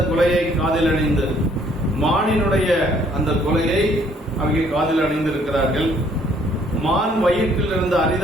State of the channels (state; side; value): normal; both; correlation 0.63